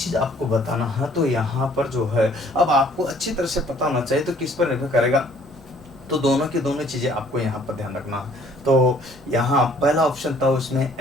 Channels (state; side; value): normal; both; correlation 0.58